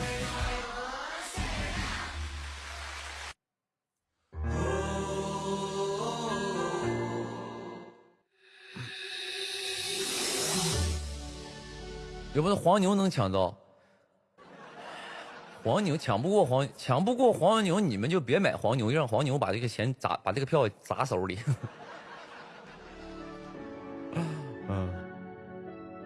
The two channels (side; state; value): both; identical; correlation 1.00